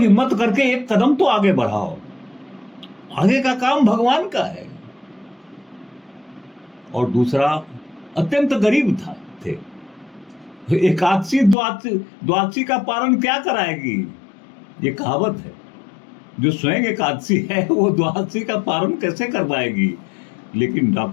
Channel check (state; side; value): drops out; right; at 11.6 s